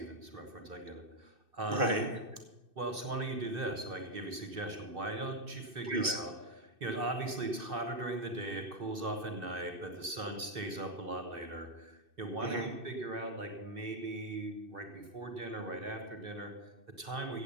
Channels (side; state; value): left; late; 2.6 ms